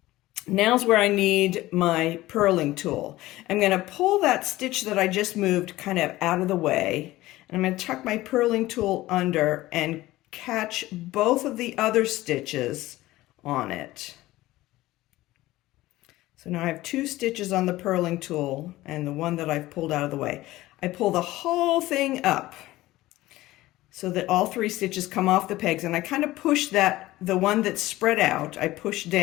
Now's where I need my purling tool. I'm going to pull that stitch that I just moved kind of out of the way, and I'm going to tuck my purling tool under and catch both of the other stitches on it. So now I have 2 stitches on the purling tool and the one that I've pulled out of the way. I pull the whole thing up so that all 3 stitches come off the pegs, and I kind of push the one that's spread out, I push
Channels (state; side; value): quieter; right; 17.2 dB